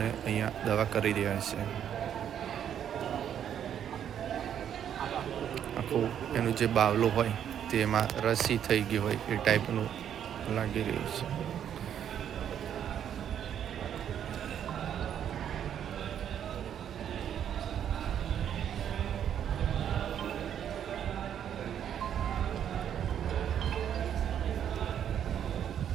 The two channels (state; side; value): quieter; left; 9.4 dB